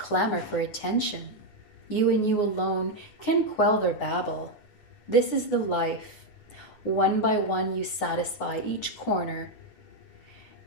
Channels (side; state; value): right; late; 9.3 ms